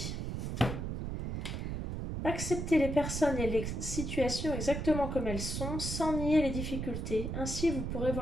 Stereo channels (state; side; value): noise; right; rumble, 3 dB below the sound